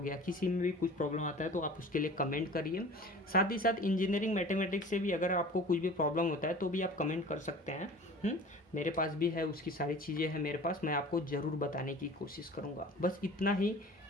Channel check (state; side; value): normal; both; correlation 0.42